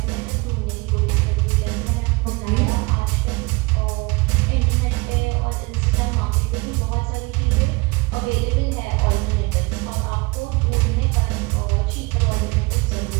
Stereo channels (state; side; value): quieter; left; 26.1 dB